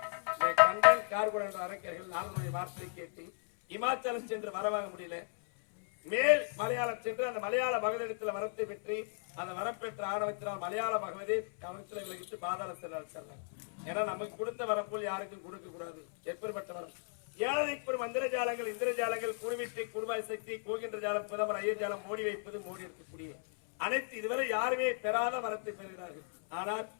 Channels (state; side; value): silent; right; 54 dB below the other